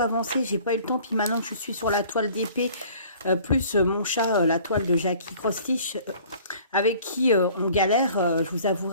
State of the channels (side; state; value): both; inverted; correlation -0.51